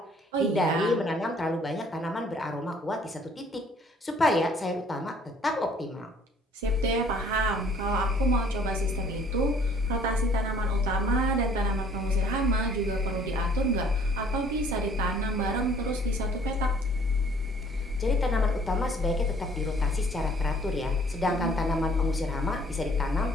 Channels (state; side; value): normal; both; correlation 0.58